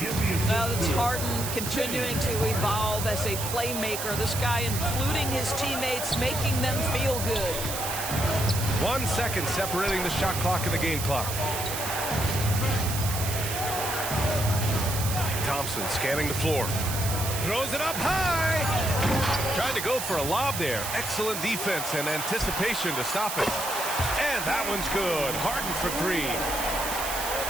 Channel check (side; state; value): right; noise; hiss, 5 dB below the sound